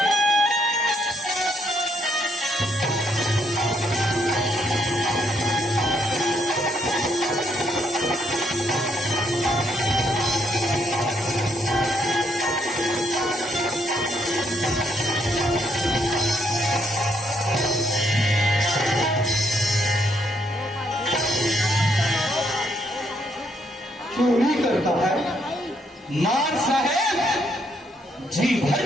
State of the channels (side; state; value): both; normal; correlation 0.73